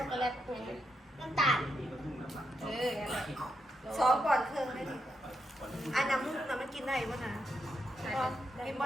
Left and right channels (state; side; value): normal; both; correlation 0.83